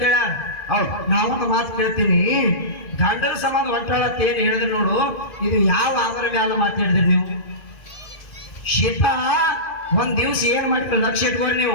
ಹೇಳ ಹೌದು ನಾವೊಂದು ಮಾತು ಕೇಳ್ತೀನಿ ಗಂಡನ ಸಂಬಂಧ ಹೊಂಟಾಳ ಅಂತ ಏನ್ ಹೇಳಿದ್ರಿ ನೋಡು ಇದು ಯಾವ ಆಧಾರ ಮ್ಯಾಲ ಮಾತಾಡಿದ್ರಿ ನೀವು ಸೀತಾ ಒಂದ್ ದಿವ್ಸ ಏನ್ ಮಾಡ್ತೀರಿ ಲಕ್ಷ್ಯ ಇಟ್ಕೊಂಡು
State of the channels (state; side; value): late; right; 2.4 ms